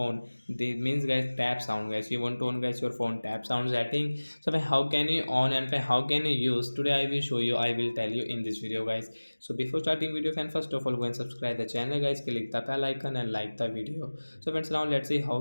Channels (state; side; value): inverted; both; correlation -1.00